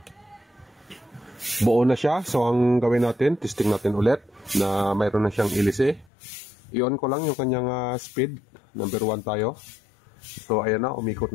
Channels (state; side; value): drops out; right; at 6.1 s